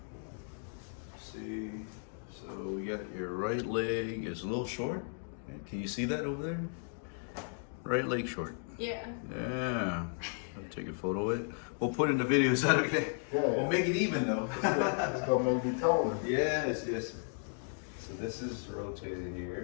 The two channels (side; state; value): right; silent; 55 dB below the other